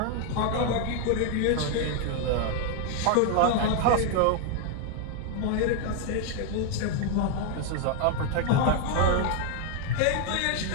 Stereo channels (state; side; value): different; both; correlation 0.00